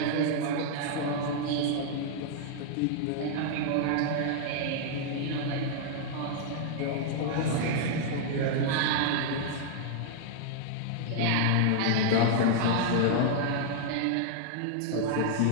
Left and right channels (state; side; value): different; both; correlation -0.01